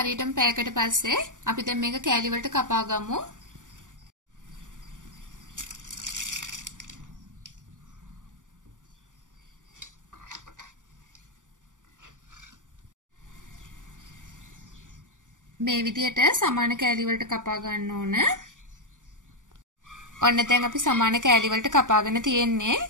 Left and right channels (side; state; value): left; late; 0.87 ms